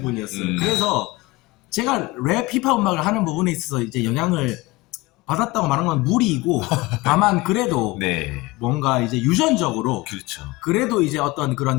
분이었어요. 그래서 제가 랩 힙합 음악을 하는 부분에 있어서 이제 영향을 받았다고 말하는 건 무리이고 다만 그래도 네. 뭔가 이제 유전적으로 그렇죠. 그래도 이제 어떤 그런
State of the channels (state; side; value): quieter; right; 21.3 dB